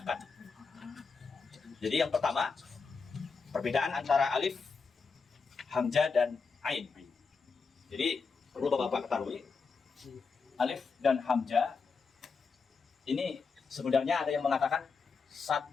Jadi yang pertama, perbedaan antara alif, hamzah dan ain. Jadi perlu bapak-bapak ketahui, alif dan hamzah ini sebenarnya ada yang mengatakan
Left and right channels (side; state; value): right; quieter; 5.0 dB